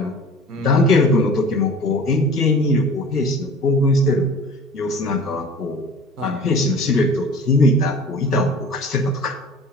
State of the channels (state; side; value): normal; both; correlation 0.42